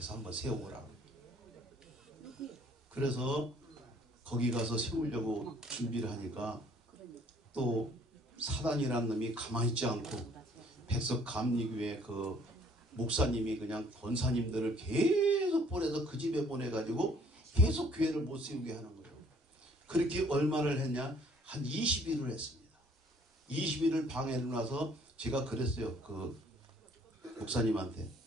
한번 세워보라고. 그래서 거기 가서 세우려고 준비를 하니까 또 사단이라는 놈이 가만히 있지 않고 백석 감리교회 그 목사님이 그냥 권사님들을 계속 보내서 그 집에 보내가지고 계속 교회를 못 세우게 하는 거예요. 그렇게 얼마를 했냐? 한 20일을 했습니다. 20일을 방해를 놔서 제가 그랬어요. 그 목사님한테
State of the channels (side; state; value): both; normal; correlation 0.59